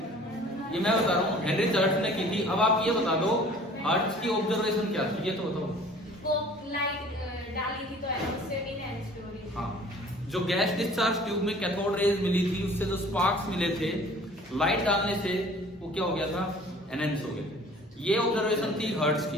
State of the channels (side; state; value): both; normal; correlation 0.49